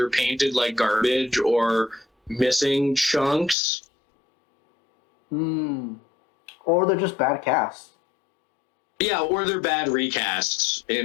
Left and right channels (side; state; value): right; drops out; at 3.6 s